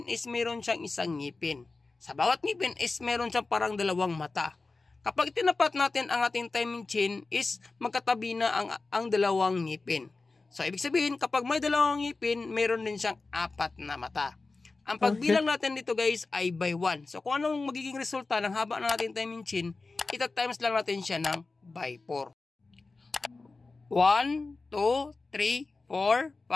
is meron siyang isang ngipin. Sa bawat ngipin is meron siyang parang dalawang mata. Kapag tinapat natin ang ating timing chain is magkatabi na ang dalawang ngipin. So ibig sabihin kapag may dalawang ngipin, meron din siyang apat na mata. Ang pagbilang natin dito guys ay by 1. So kung anong magiging resulta ng haba ng ating timing chain, ita-times lang natin siya ng by 4. 1, 2, 3, 4,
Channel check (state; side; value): quieter; right; 3.7 dB